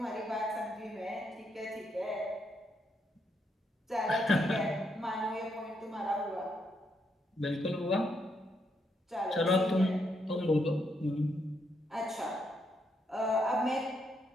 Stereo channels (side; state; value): both; normal; correlation 0.78